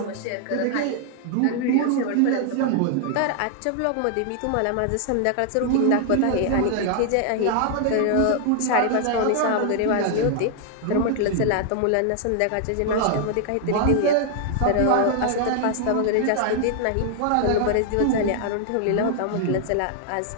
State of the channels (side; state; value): both; different; correlation 0.00